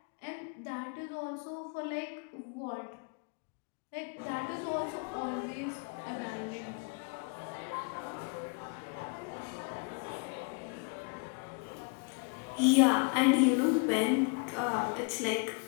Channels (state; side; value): quieter; right; 34.6 dB